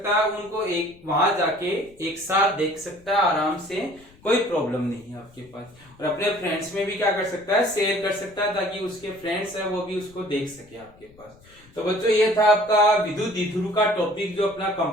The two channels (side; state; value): left; noise; rumble, 26 dB below the sound